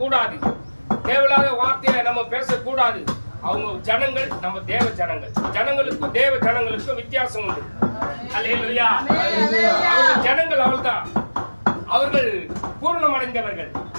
தேவையில்லாத வார்த்தையை நம்ம பேசக்கூடாது. அவங்க ஜனங்கள், நம்ம தேவ ஜனங்கள். ஜனங்களுக்கும் தேவ ஜனங்களுக்கும் வித்தியாசம் உண்டு. அல்லேலூயா. அவங்க ஜனங்கள் அவள்தான், அவர்கள் பூர்ணம் அடைந்தவர்கள்,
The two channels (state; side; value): inverted; both; correlation -1.00